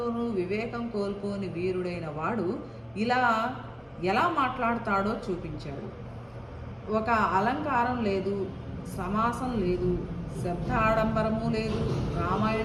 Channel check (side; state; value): both; identical; correlation 1.00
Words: వివేకం కోల్పోని వీరుడైన వాడు ఇలా ఎలా మాట్లాడతాడో చూపించాడు. ఒక అలంకారం లేదు, సమాసం లేదు, శబ్ద ఆడంబరము లేదు.